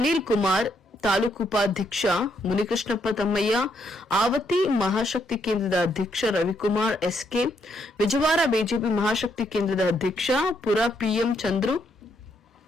ಕುಮಾರ್, ತಾಲೂಕು ಉಪಾಧ್ಯಕ್ಷ ಮುನಿಕೃಷ್ಣಪ್ಪ ತಮ್ಮಯ್ಯ, ಆವತಿ ಮಹಾಶಕ್ತಿ ಕೇಂದ್ರದ ಅಧ್ಯಕ್ಷ ರವಿಕುಮಾರ್ ಎಸ್ಕೆ, ವಿಜಯವಾಡ ಬಿಜೆಪಿ ಮಹಾಶಕ್ತಿ ಕೇಂದ್ರದ ಅಧ್ಯಕ್ಷ ಪುರ ಪಿಎಂ ಚಂದ್ರು,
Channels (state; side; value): normal; both; correlation 0.75